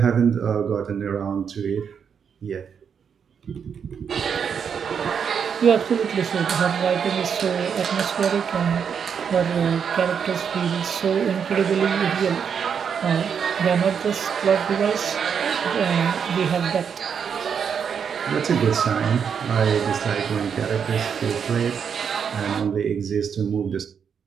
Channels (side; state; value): left; quieter; 7.1 dB